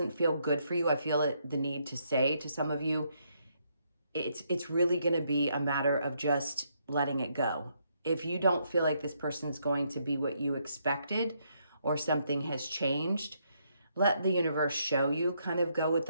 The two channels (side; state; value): both; inverted; correlation -0.75